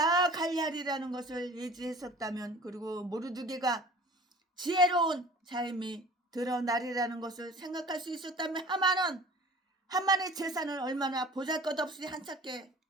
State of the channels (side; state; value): both; normal; correlation 0.44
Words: 관리하리라는 것을 예지했었다면, 그리고 모르드게가 지혜로운 자임이 드러나리라는 것을 생각할 수 있었다면, 하만의 재산을 얼마나 보잘것없이 한찮게